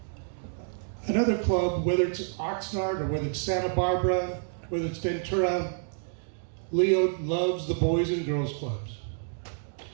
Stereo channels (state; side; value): silent; left; digital silence